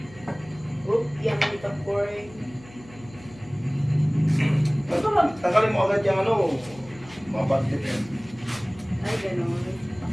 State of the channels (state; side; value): noise; left; hum, 21 dB below the sound